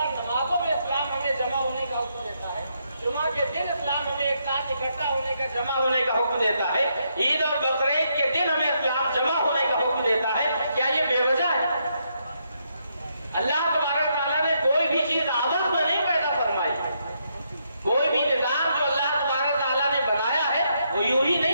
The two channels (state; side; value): inverted; both; correlation -0.77